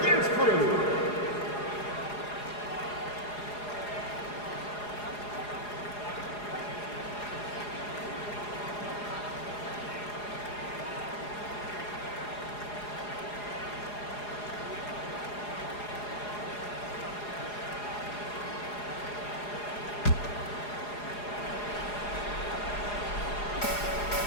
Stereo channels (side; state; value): right; late; 4.8 ms